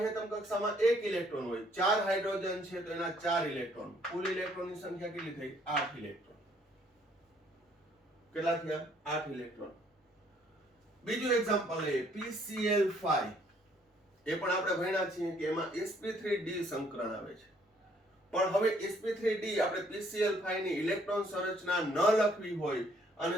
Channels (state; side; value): normal; both; correlation 0.64